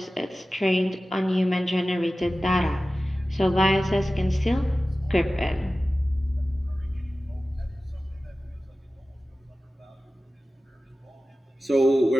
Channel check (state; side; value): normal; both; correlation 0.95